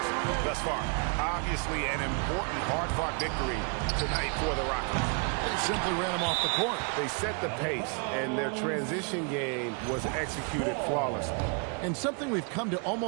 thus far. Obviously, an important, hard-fought victory tonight for the Rockets. They simply ran him off the court. They set the pace, and their transition game was executed flawlessly. And something we've come to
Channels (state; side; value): quieter; left; 36.8 dB